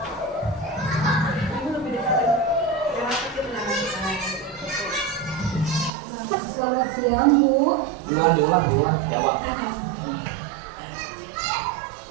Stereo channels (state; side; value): drops out; left; at 5.9 s